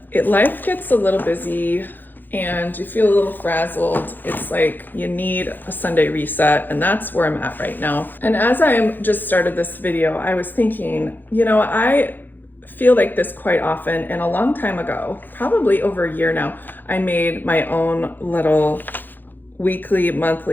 life gets a little busy and you feel a little frazzled, it's like you need a Sunday reset, and that's where I'm at right now. And as I just started this video, I was thinking, you know, I feel like this quite often, and a long time ago, probably over a year now, I made my own little weekly,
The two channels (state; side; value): late; right; 0.089 ms